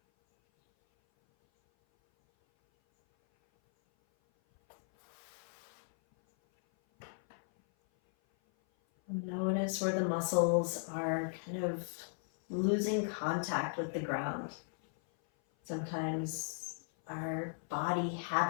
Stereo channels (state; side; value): silent; right; 54 dB below the other